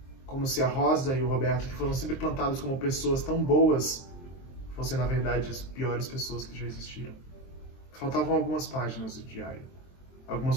se a Rosa e o Roberto, que foram sempre plantados como pessoas tão boas, fossem na verdade as piores pessoas que já existiram. Faltavam algumas páginas do diário. Algumas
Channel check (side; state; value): right; late; 23 ms